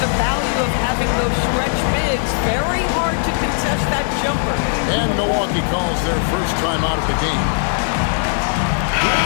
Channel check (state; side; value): silent; right; 60 dB below the other